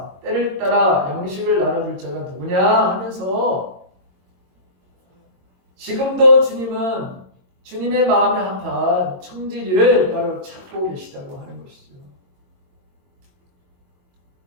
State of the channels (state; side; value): late; left; 22 ms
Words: 때를 따라 양식을 나눠줄 자가 누구냐 하면서 지금도 주님은 주님의 마음에 합한 청지기를 바로 찾고 계시다고 하는 것이죠.